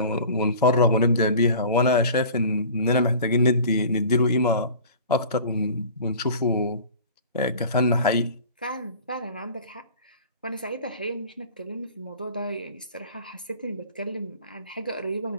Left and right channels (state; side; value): inverted; both; correlation -0.42